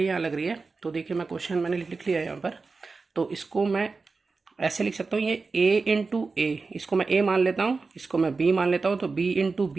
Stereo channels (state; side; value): quieter; left; 4.2 dB